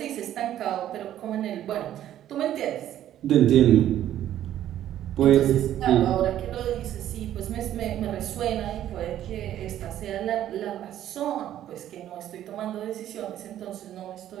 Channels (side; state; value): left; quieter; 11.8 dB